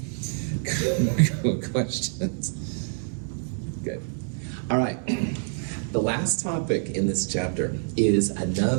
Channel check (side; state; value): left; silent; 61 dB below the other